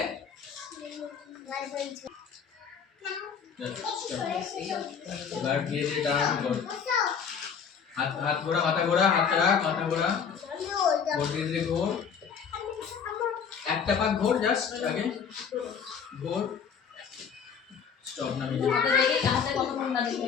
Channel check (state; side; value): quieter; right; 6.8 dB